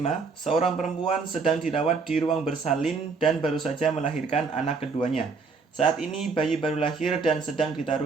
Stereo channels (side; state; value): left; quieter; 4.7 dB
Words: Seorang perempuan sedang dirawat di ruang bersalin dan baru saja melahirkan anak keduanya. Saat ini bayi baru lahir dan sedang